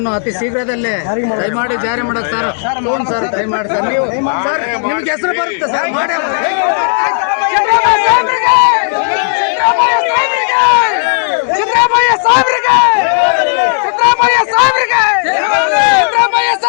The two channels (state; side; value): silent; right; digital silence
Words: ಅತಿ ಶೀಘ್ರದಲ್ಲೇ ದಯಮಾಡಿ ಜಾರಿ ಮಾಡೋದು ಸರ್. ಸರ್ ದಯಮಾಡಿ ಸರ್, ನೀವು ಸರ್ ನಿಮ್ಗೆ ಹೆಸರು ಬರುತ್ತೆ ಸರ್. ಸಿದ್ದರಾಮಯ್ಯ ಸಾಹೇಬ್ರಿಗೆ